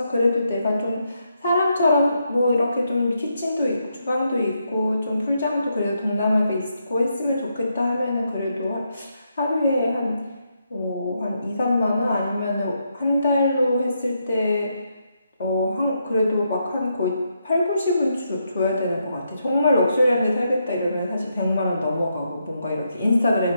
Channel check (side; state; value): both; inverted; correlation -0.80